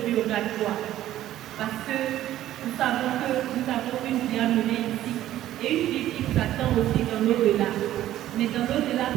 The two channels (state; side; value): quieter; left; 13.3 dB